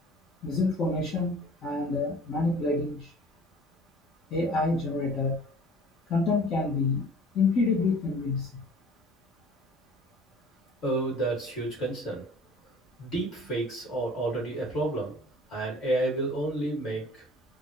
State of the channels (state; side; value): normal; both; correlation 0.47